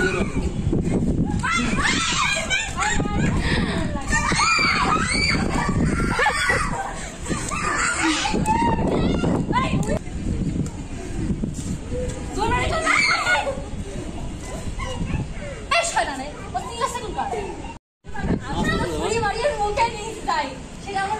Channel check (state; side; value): identical; both; correlation 1.00